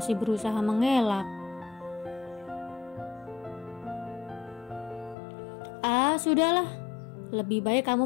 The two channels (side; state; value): right; drops out; at 5.2 s